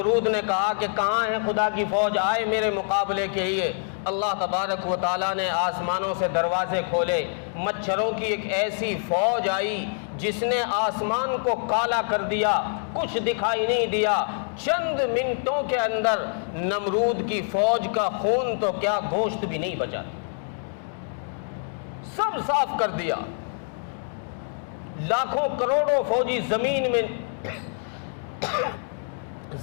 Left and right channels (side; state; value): right; silent; digital silence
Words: نے کہا کہ کہاں ہے خدا کی فوج، آئے میرے مقابلے کے لیے. اللہ تبارک و تعالیٰ نے آسمانوں سے دروازے کھولے، مچھروں کی ایک ایسی فوج آئی جس نے آسمان کو کالا کر دیا، کچھ دکھائی نہیں دیا. چند منٹوں کے اندر نمرود کی فوج کا خون تو کیا گوشت بھی نہیں بچا، سب صاف کر دیا. لاکھوں کروڑوں فوجی زمین